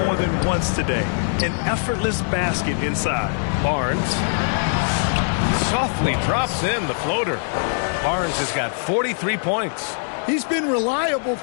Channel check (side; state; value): right; silent; digital silence